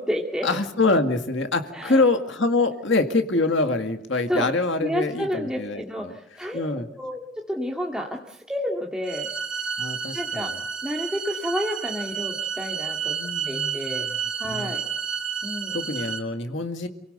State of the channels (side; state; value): both; normal; correlation 0.36